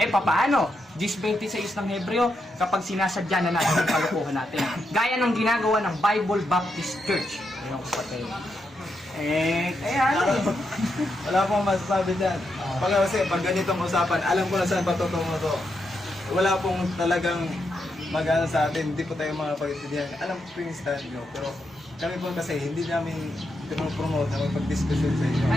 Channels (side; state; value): both; normal; correlation 0.83